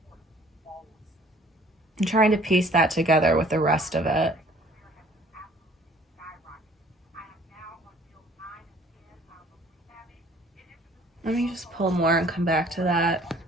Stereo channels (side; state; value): both; normal; correlation 0.55